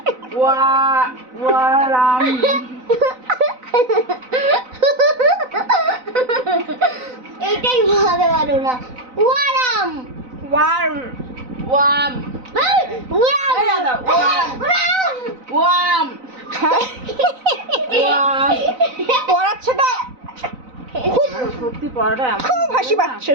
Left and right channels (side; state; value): left; late; 4.0 ms